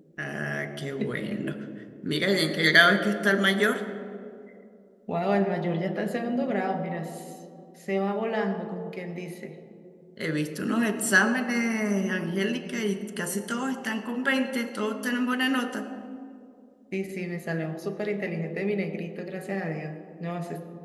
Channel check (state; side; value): identical; both; correlation 1.00